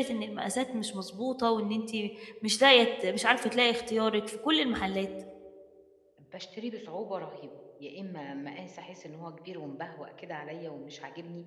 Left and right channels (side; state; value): both; identical; correlation 1.00